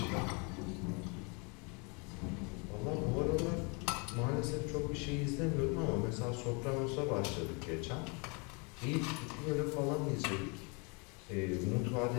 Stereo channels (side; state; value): right; quieter; 32.8 dB